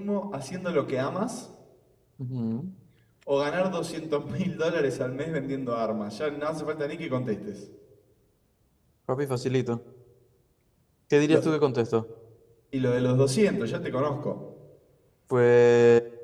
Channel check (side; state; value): both; identical; correlation 1.00